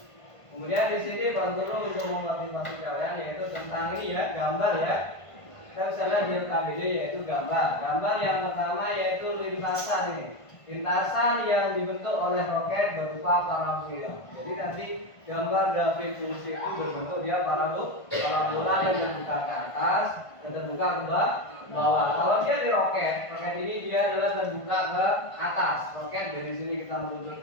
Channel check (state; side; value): late; right; 1.5 ms